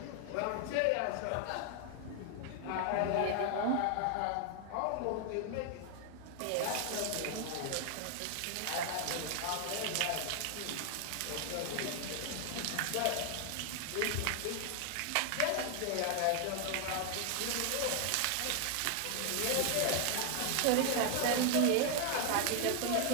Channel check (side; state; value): both; different; correlation 0.00